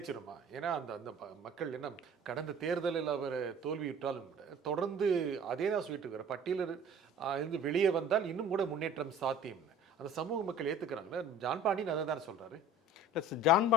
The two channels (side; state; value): both; normal; correlation 0.45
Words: ஏன்னா அந்த அந்த மக்கள் என்ன கடந்த தேர்தலில் அவர் தோல்வியுற்றாலும் கூட தொடர்ந்து அதே தான் சொல்லிட்டு இருக்கிற பட்டியலில் இருந்து வெளியே வந்தால் இன்னும் கூட முன்னேற்றம் சாத்தியம்னு அந்த சமூக மக்கள் ஏற்றுக்கிறாங்களே. ஜான் பாண்டியன் அதை தானே சொல்கிறாரு. ஜான்